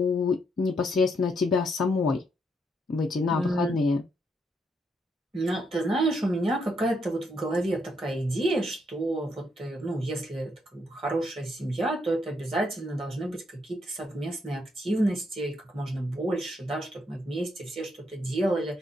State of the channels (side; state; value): both; normal; correlation 0.76